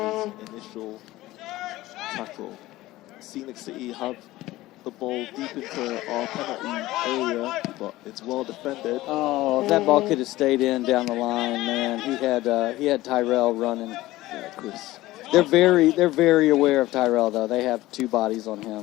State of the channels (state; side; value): quieter; right; 17.3 dB